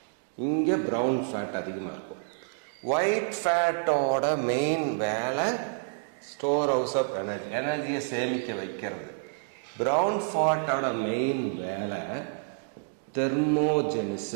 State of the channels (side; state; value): left; silent; digital silence